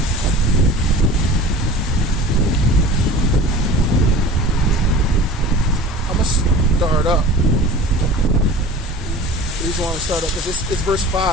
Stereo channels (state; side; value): normal; both; correlation 0.39